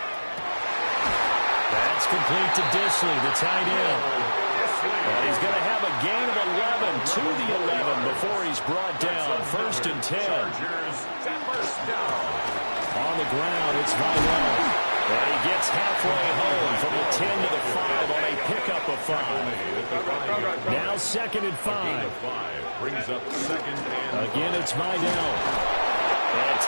That's complete to Disley, the tight end. And he's going to have a gain of 11 to the 11 before he's brought down. 1st and 10. On the ground, it's Vidal. And he gets halfway home from the 10 to the 5 on a pickup of 5. Now 2nd and 5. Brings up 2nd and Again, it's Vidal. And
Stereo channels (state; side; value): inverted; both; correlation -1.00